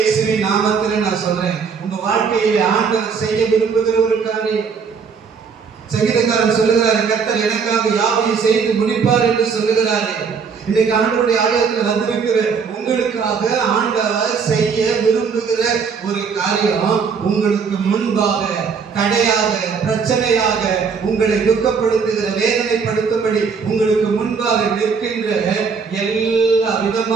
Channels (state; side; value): quieter; left; 5.8 dB